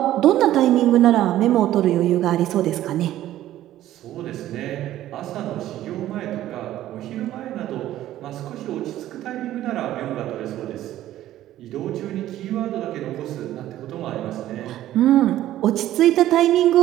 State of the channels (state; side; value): quieter; left; 13.5 dB